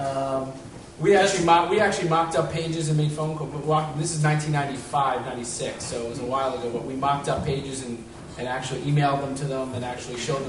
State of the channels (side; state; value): both; identical; correlation 1.00